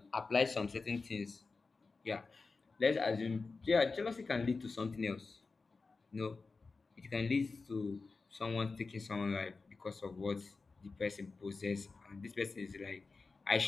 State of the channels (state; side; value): quieter; right; 4.1 dB